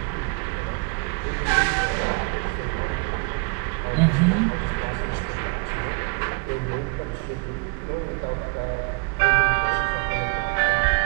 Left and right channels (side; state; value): left; quieter; 33.6 dB